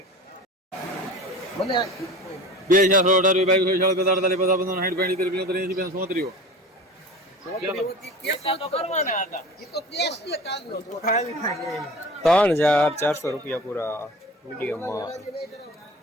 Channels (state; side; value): normal; both; correlation 0.37